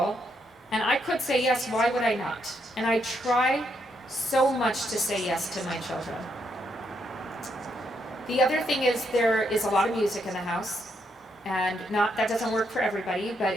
and I could say yes, why would I not? And I try so much to say yes to my children. The other thing is, there is a lot of music in the house, and that doesn't work for everybody, but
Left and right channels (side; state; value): both; normal; correlation 0.77